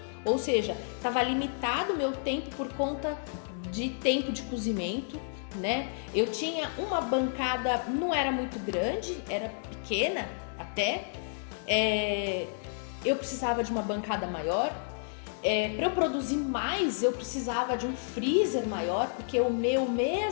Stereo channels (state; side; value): silent; right; digital silence